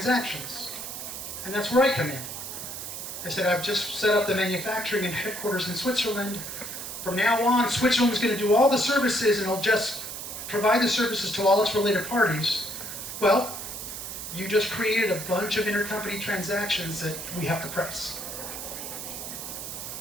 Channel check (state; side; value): noise; right; hiss, 8 dB below the sound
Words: And that's where I come in. I said, I've just set up the manufacturing and headquarters in Switzerland. From now on, Switzerland's going to do all the services and it'll just provide the services to all its related parties. Well, you just created a bunch of intercompany transactions that we have to price.